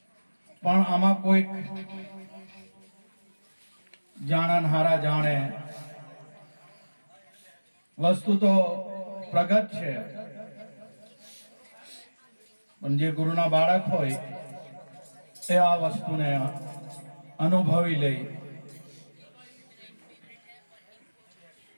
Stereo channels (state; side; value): inverted; both; correlation -1.00